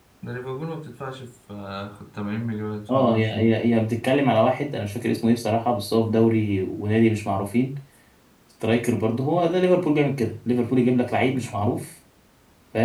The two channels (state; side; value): identical; both; correlation 1.00